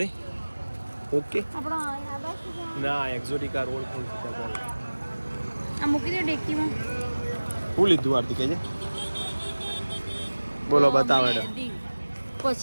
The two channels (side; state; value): both; inverted; correlation -1.00